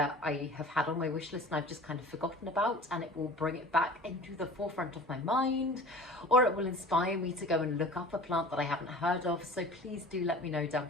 I have had on my wish list and I've just kind of forgotten about, and it will bring it back into the forefront of my mind, or it will inspire me to go and look up a plant that I haven't heard of, so please do let me know down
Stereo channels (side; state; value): both; normal; correlation 0.42